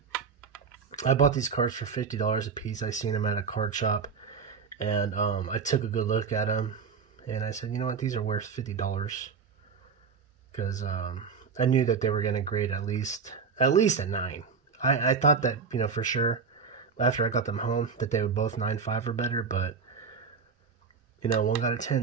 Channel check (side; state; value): left; quieter; 5.6 dB